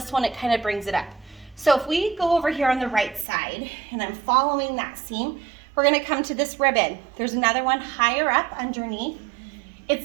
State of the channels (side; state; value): left; drops out; at 3.2 s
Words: one. It kind of brings it up. So if we go over here on the right side and I'm following that seam, we're going to come to this ribbon. There's another one higher up underneath.